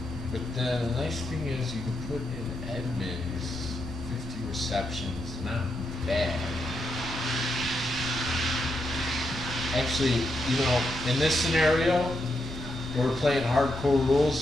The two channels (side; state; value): both; normal; correlation 0.82